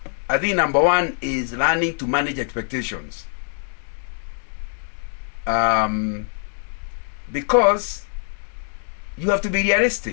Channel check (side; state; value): right; silent; 63 dB below the other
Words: I think number one is learning to manage expectations. Because you have to be